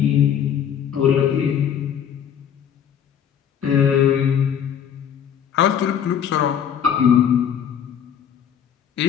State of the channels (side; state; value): right; quieter; 8.6 dB